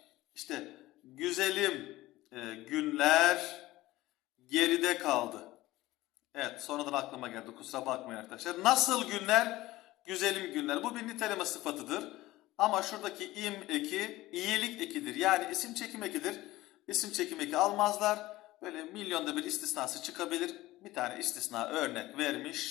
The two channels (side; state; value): right; quieter; 17.6 dB